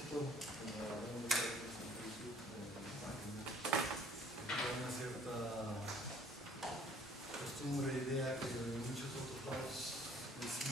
como hablamos de en Facebook, en la página, hay una cierta costumbre, idea que en muchos otros lados es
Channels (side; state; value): both; normal; correlation 0.56